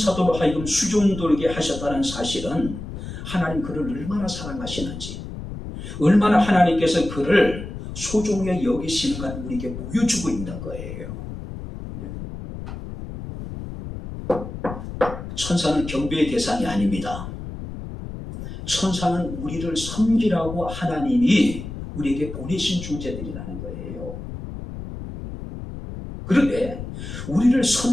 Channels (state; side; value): noise; left; rumble, 9 dB below the sound